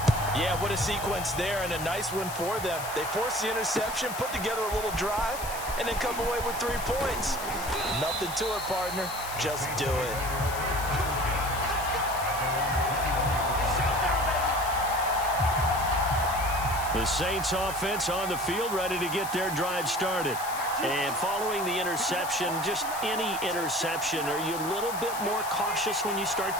Yeah, what a sequence there, and a nice one for them. They forced the interception, put together a little drive, and then come away with 3 points. Nothing to it, partner. Just do it. The Saints offense on the field, ready to get their drive started. And following the interception, just any interception, are you a little bit more cautious when you start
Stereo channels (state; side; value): noise; left; hiss, 9 dB below the sound